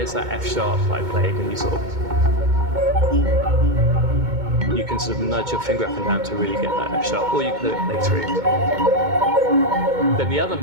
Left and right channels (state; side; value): late; left; 2.2 ms